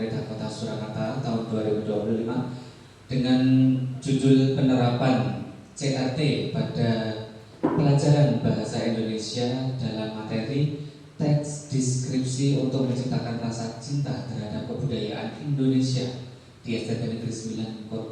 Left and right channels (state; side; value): identical; both; correlation 1.00